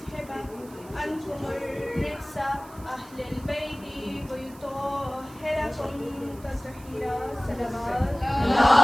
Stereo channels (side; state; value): right; noise; hiss, 22 dB below the sound